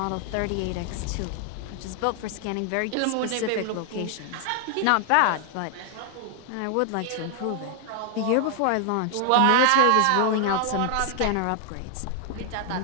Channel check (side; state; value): both; different; correlation 0.00